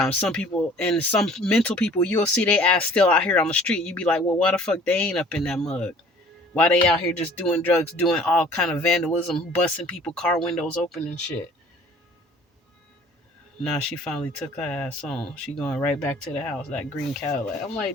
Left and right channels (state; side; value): normal; both; correlation 0.51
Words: some people and some mental people you'll see they ass still out here on the street. You be like, well, why the fuck they ain't up in that mug? Why they out here just doing drugs, doing all kind of vandalism, busting people car windows open and shit? Now she finally took her ass on. She going right back to the house, that green Cadillac. I'm